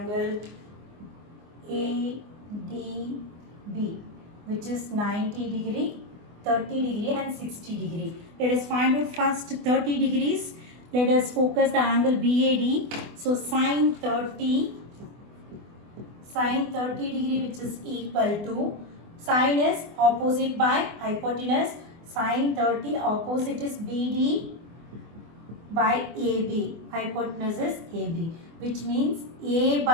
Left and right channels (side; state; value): left; late; 24 ms